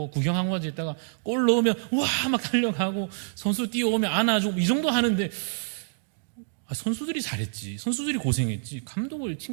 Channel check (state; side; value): silent; left; digital silence